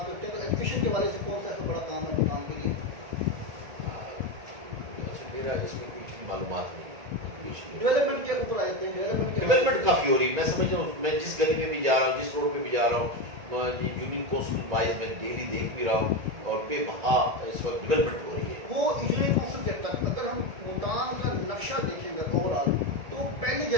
کرتے ہیں، تو ایجوکیشن کے حوالے سے کون سا ایسا بڑا کام ہے ملتان کے لیے؟ میرا اس میں کچھ معلومات نہیں. ڈیولپمنٹ کے اوپر آئے تھے. ڈیولپمنٹ کافی ہو رہی. میں سمجھ رہا ہوں، میں جس گلی میں بھی جا رہا ہوں، جس روڈ پہ بھی جا رہا ہوں، یونین کونسل وائز میں ڈیلی دیکھ بھی رہا ہوں، اور بے بہا اس وقت ڈیولپمنٹ ہو رہی ہے. وہ یونین کونسل کے تک اگر ہم ملتان کا نقشہ دیکھیں گے اوور آل تو پہلے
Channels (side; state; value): left; late; 1.8 ms